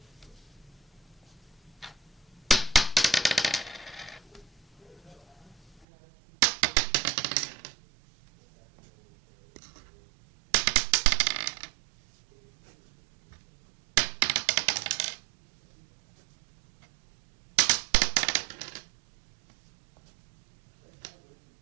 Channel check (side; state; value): left; drops out; at 5.9 s